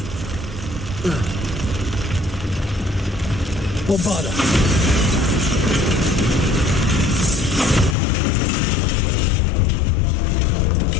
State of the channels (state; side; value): drops out; right; at 8.0 s